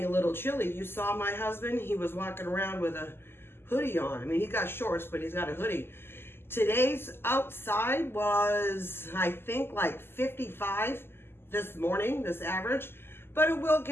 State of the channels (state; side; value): late; right; 0.11 ms